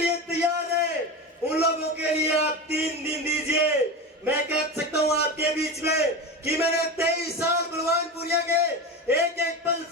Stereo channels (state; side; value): normal; both; correlation 0.23